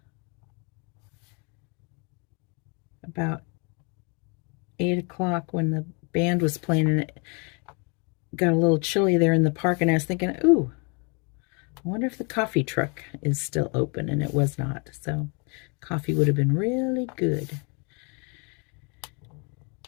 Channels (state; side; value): quieter; right; 33.6 dB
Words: about 8 o'clock when the band was playing, and it got a little chilly there in the park, and I was thinking, ooh, I wonder if the coffee truck is still open, and it was not. So coffee would have been really good.